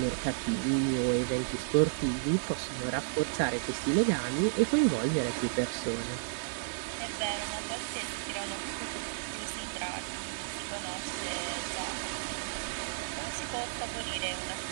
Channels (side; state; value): left; silent; 56 dB below the other